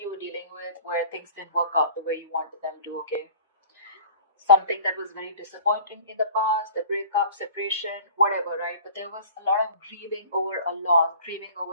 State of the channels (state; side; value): inverted; both; correlation -0.45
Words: you were dealing with where things didn't work out the way you wanted them to, okay. Something that was very disappointing in the past, a breakup, separation, whatever, right? But there was a lot of grieving over a loss, grieving